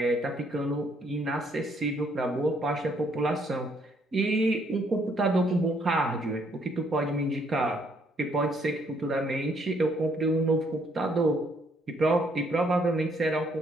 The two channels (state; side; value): normal; both; correlation 0.69